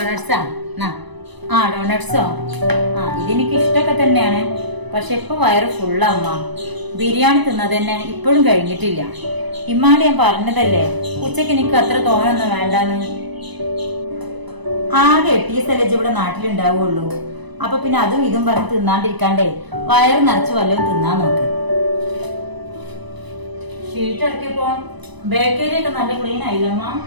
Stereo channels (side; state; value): left; late; 1.0 ms